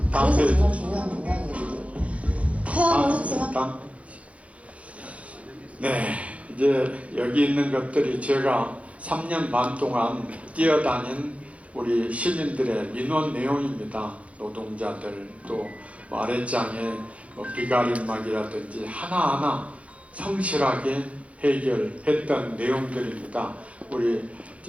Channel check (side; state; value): left; late; 0.064 ms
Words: 다음 페이지. 정말 중요한 문장이거든요. 해양을 했지만. 네, 이제 여기 있는 것들이 제가 3년 반 동안 뛰어다닌 우리 시민들의 민원 내용입니다. 노동자들 또 아랫장에 비가림막이라든지 하나하나 성실하게 해결했던 내용들입니다. 우리